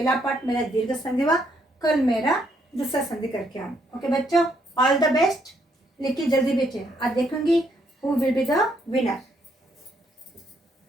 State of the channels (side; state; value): both; normal; correlation 0.72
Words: पार्ट मेरा दीर्घ संधि हुआ, कल मेरा दूसरा संधि करके आऊँ। ओके बच्चों, ऑल द बेस्ट। लिखिए जल्दी भेजिए। आज देखूंगी who will be the winner.